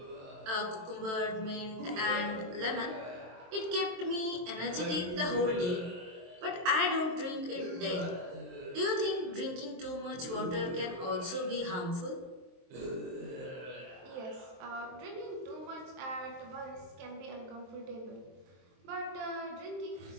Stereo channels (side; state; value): left; late; 23 ms